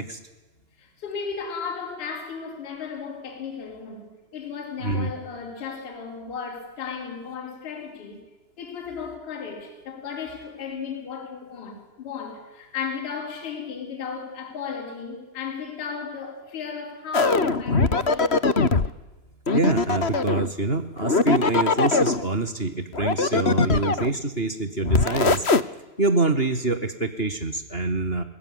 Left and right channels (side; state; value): right; late; 3.1 ms